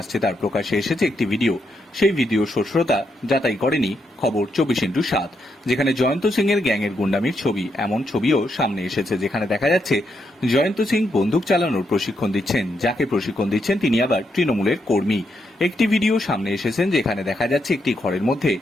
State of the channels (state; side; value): normal; both; correlation 0.80